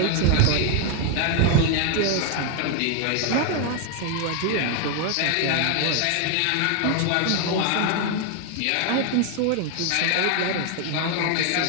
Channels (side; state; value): both; different; correlation 0.01